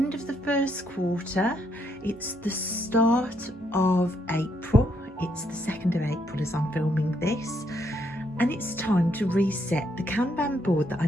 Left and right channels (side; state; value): both; normal; correlation 0.74